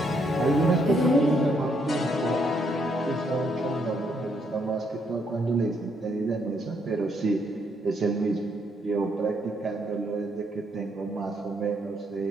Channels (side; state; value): both; normal; correlation 0.73